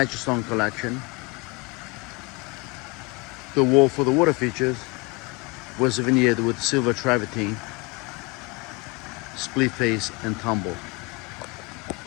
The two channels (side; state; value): right; quieter; 27.5 dB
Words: stone collection. The wall for the water features was veneered with silver travertine, split face and tumble.